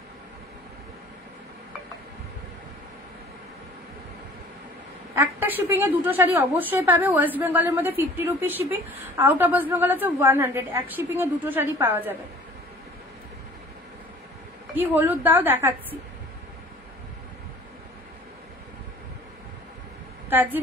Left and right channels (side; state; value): both; normal; correlation 0.48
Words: একটা শিপিং এ দুটো শাড়ি অবশ্যই পাবে। ওয়েস্ট বেঙ্গলের মধ্যে 50 rupees shipping, out of West Bengal হচ্ছে 100। এক শিপিং এ দুটো শাড়ি পাওয়া যাবে। কি হলুদ দাও দেখাচ্ছি, কাজি